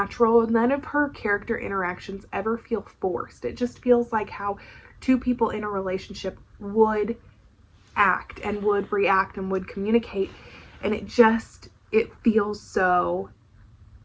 None of her character interactions ever feel forced. It just feels like how 2 people in a relationship would act and would react and would communicate, and it just it feels so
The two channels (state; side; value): identical; both; correlation 1.00